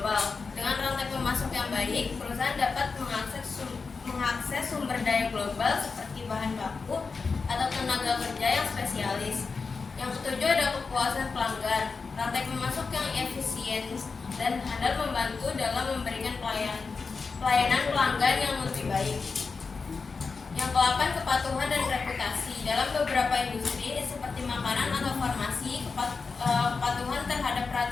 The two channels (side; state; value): right; quieter; 4.7 dB